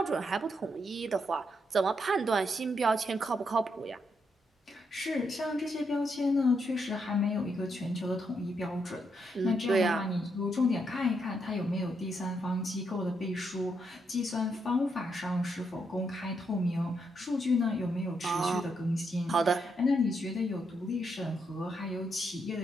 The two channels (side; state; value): both; normal; correlation 0.79